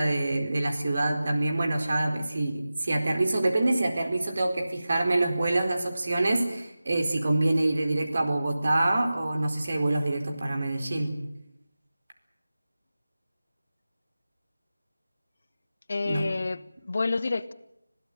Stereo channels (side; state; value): both; inverted; correlation -0.95